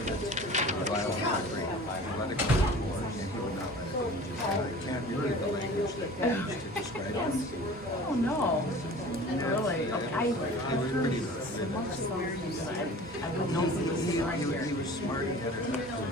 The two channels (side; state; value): both; normal; correlation 0.42